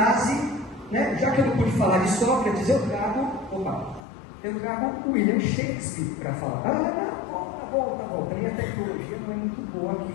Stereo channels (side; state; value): right; drops out; at 4.0 s